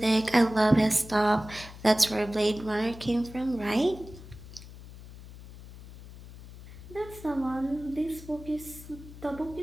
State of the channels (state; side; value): noise; left; hum, 16 dB below the sound